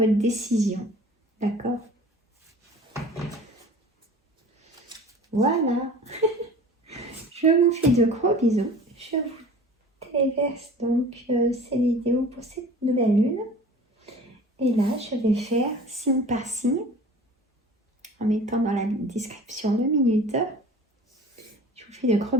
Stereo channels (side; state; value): both; normal; correlation 0.43